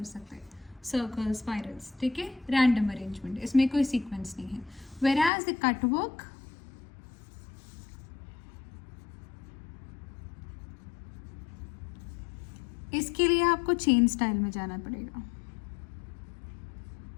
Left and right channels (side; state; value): right; drops out; at 5.3 s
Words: सकते हैं. सर्कल, स्पाइरल्स, ठीक है, रैंडम अरेंजमेंट, इसमें कोई सीक्वेंस नहीं है. वेराज द कट वर्क, इसके लिए आपको चेन स्टाइल में जाना पड़ेगा.